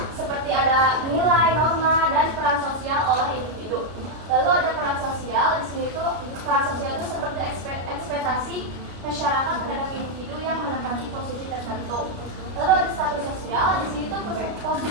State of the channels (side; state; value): left; late; 33 ms